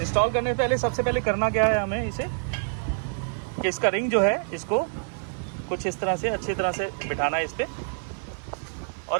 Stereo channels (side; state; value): left; silent; digital silence